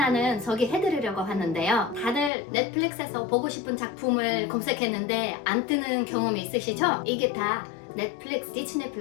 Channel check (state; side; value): drops out; right; at 2.3 s